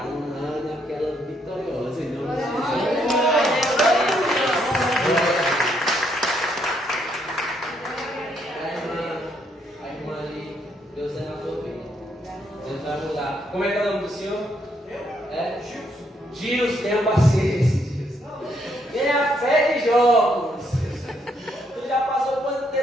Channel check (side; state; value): both; normal; correlation 0.73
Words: um ano aquela vitoriosa. Em nome de Jesus. A irmã ali, Deus é na tua vida. Deus vai mudar. Como é que é o nome do senhor? É? Gilson, tenha paciência. Tenha fé de jogos. Tu já passou quanto